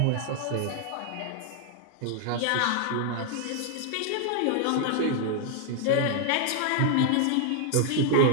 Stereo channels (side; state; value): both; different; correlation 0.00